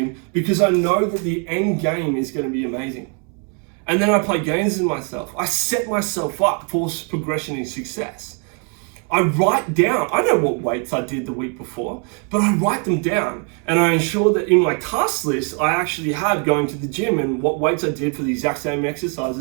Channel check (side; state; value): left; quieter; 38.6 dB